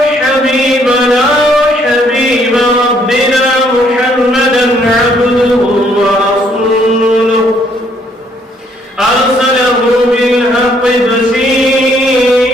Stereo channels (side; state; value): both; normal; correlation 0.67